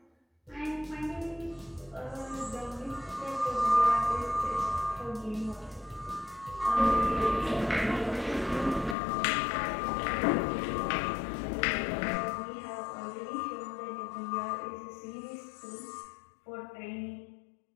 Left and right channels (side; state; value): right; drops out; at 9.0 s